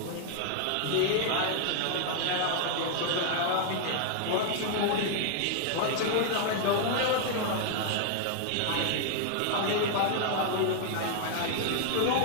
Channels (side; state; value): both; different; correlation 0.00